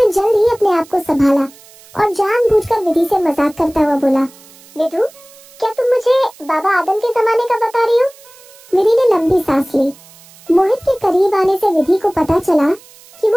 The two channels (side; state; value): right; noise; hiss, 24 dB below the sound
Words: जल्द ही अपने आप को संभाला और जानबूझकर विधि से मजाक करता हुआ बोला, विधु, क्या तुम मुझे बाबा आदम के जमाने का बता रही हो? विधि ने लंबी सांस ली। मोहित के करीब आने से विधि को पता चला कि